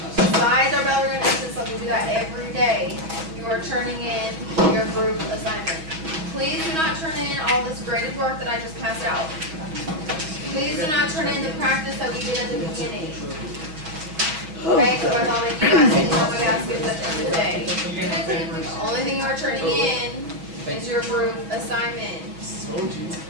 Besides our bell ring exit slip, we do that every day. You are turning in your group assignment. Please do not turn in all this graded work that I just passed out. Please do not turn in the practice that we did at the beginning. Okay, so I thought you guys didn't know my baskets at the end of the day. The only thing you are turning in is your group assignment.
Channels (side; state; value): left; late; 6.3 ms